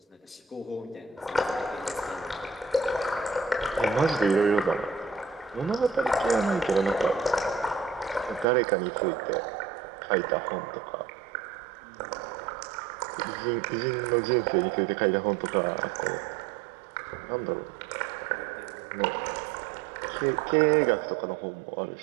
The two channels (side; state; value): left; drops out; at 8.5 s